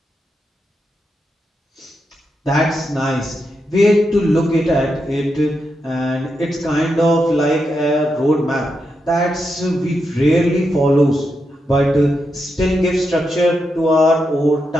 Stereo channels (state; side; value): normal; both; correlation 0.85